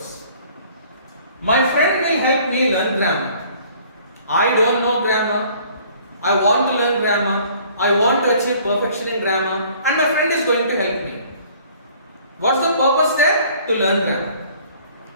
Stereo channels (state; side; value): inverted; both; correlation -0.55